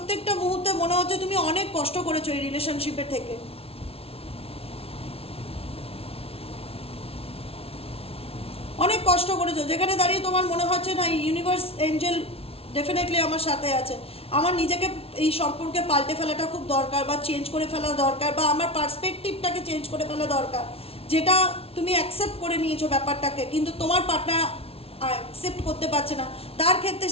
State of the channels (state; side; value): late; right; 0.28 ms